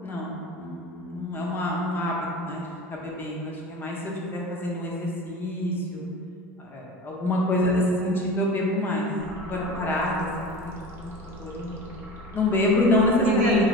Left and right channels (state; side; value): normal; both; correlation 0.34